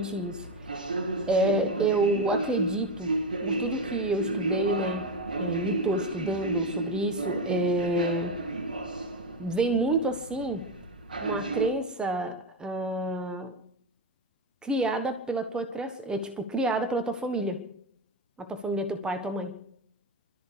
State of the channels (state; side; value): normal; both; correlation 0.13